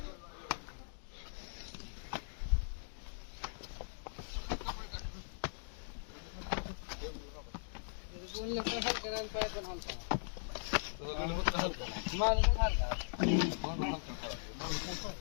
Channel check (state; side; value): silent; right; digital silence